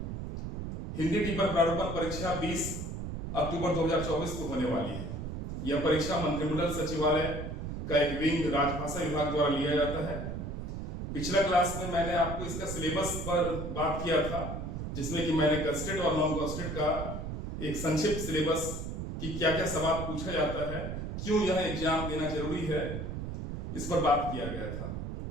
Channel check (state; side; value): noise; right; rumble, 5 dB below the sound